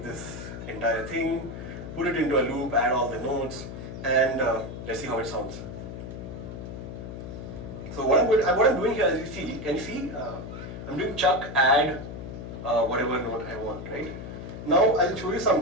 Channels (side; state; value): left; noise; hum, 9 dB below the sound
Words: this entire thing, put it into a loop, add all the notes, and let's see how it sounds. So what I'm doing here, as you see, can you see? I'm doing chuck, add, whatever note I want, right? Now I'll show you